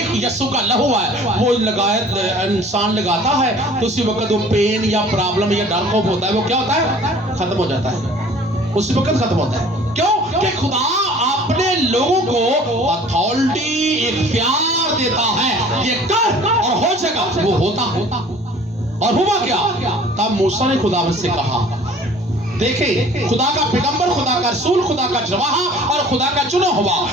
यीशु का लहू है, वो लगाया इंसान लगाता है तो उसी वक्त वो पेन या प्रॉब्लम या डर खौफ होता है, वो क्या होता है, खत्म हो जाता है, उसी वक्त खत्म होता है। क्यों कि खुदा अपने लोगों को अथॉरिटी इख्तियार देता है, ये कर और हो जाएगा, वो होता। और हुआ क्या, तब मूसा ने खुदा से कहा, देखे खुदा का पैगंबर, खुदा का रसूल, खुदा का जवाहा और खुदा का चुना हुआ,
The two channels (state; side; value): normal; both; correlation 0.49